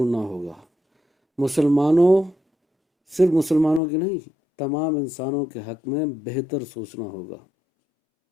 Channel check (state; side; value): drops out; right; at 3.8 s